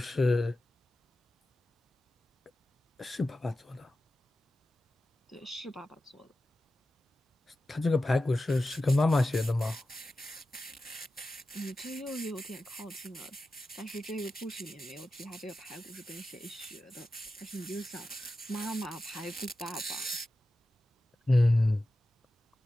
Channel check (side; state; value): both; normal; correlation 0.93